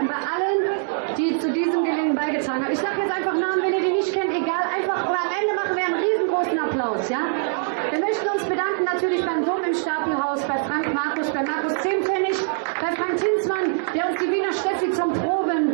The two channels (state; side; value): silent; left; digital silence